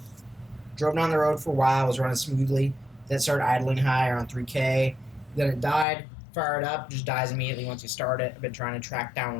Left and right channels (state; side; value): drops out; right; at 5.9 s